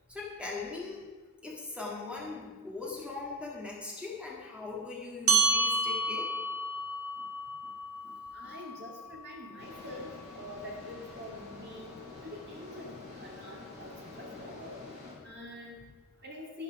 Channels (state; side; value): normal; both; correlation 0.27